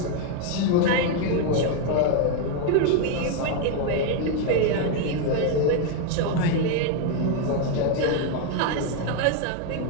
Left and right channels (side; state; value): both; different; correlation 0.01